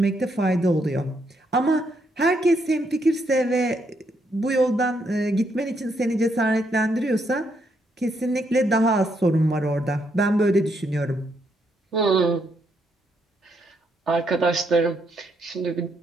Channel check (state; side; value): normal; both; correlation 0.76